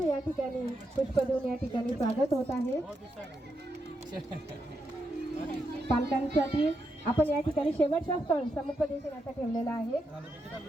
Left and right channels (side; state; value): both; normal; correlation 0.83